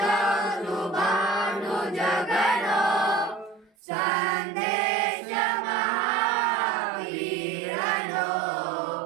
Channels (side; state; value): left; drops out; at 3.7 s